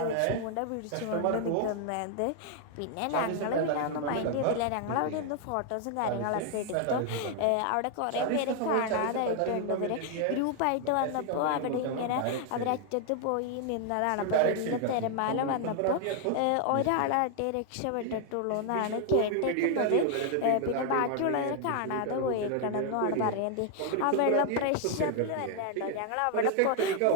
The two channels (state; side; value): different; both; correlation 0.00